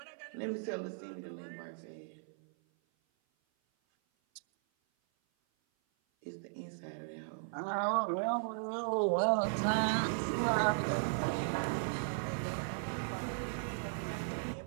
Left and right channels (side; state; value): left; silent; 53 dB below the other